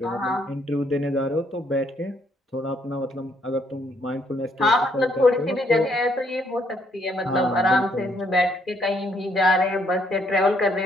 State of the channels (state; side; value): normal; both; correlation 0.70